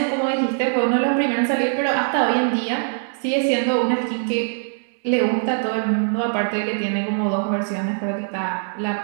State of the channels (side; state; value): left; silent; 64 dB below the other